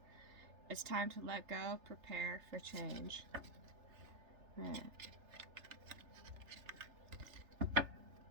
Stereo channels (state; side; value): late; left; 3.3 ms